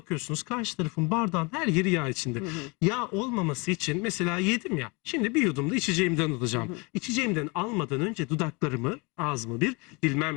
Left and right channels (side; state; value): right; quieter; 28.3 dB